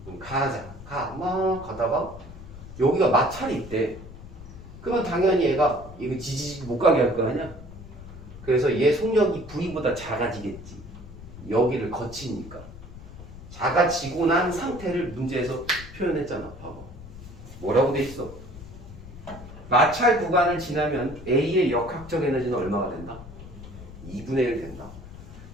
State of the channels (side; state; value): left; noise; rumble, 15 dB below the sound